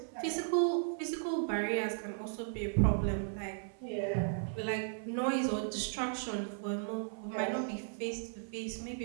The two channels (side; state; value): left; silent; 54 dB below the other